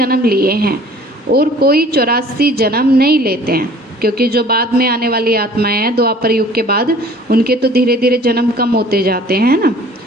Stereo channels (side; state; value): both; normal; correlation 0.50